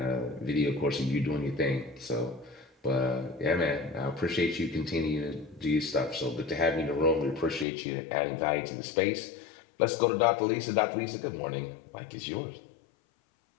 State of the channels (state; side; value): drops out; right; at 7.7 s